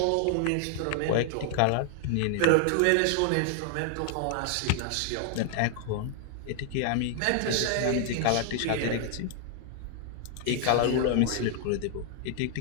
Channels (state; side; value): different; both; correlation 0.00